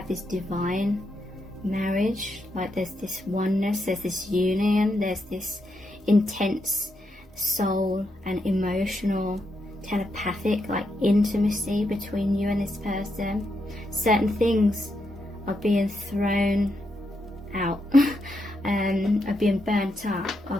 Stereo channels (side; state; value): both; normal; correlation 0.82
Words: this divine marriage, like there's this oneness, there's this union, there's this intense soul and emotional, telepathic, like intimacy between you and this person. Certain things are being thrown out, are being burnt up, are